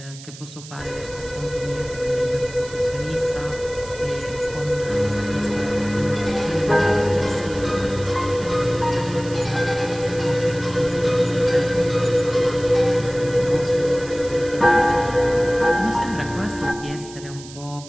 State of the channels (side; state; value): right; noise; hiss, 17 dB below the sound